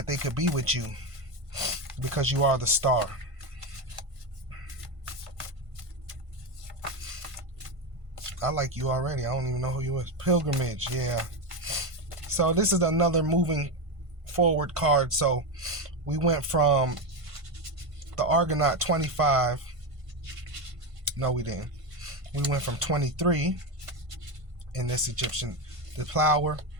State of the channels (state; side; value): late; left; 1.5 ms